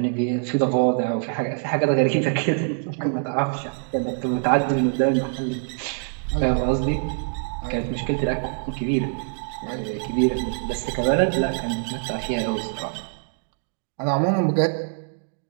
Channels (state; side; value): silent; left; digital silence